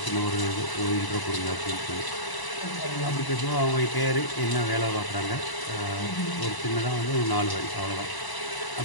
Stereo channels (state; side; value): late; right; 1.0 ms